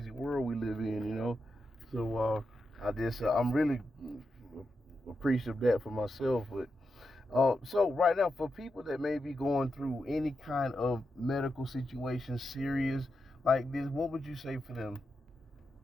world we live in. So I'm really appreciative of that for myself, but. So right now, for people that may be going through any kind of medical situation serious like this, what would you say for them?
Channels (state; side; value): normal; both; correlation 0.87